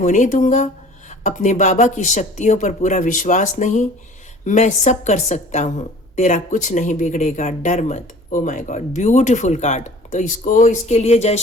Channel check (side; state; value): both; normal; correlation 0.47